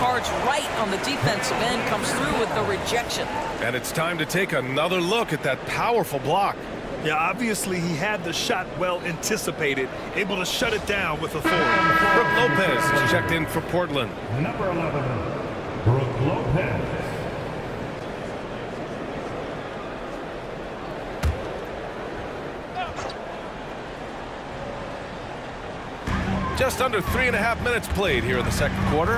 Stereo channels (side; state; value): both; identical; correlation 1.00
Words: right on the defensive end, comes through with the rejection. And it's time to take another look at that powerful block. Yeah, obviously he had the shot well anticipated, able to shut it down with authority. Brook Lopez is checked in for Portland. Number 11, Brook Lopez. Just under 3.5 minutes played here in the second